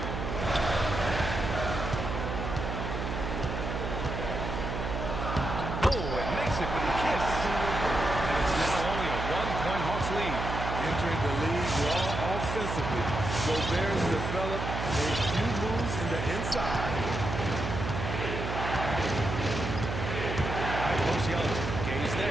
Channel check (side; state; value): right; noise; hum, 4 dB below the sound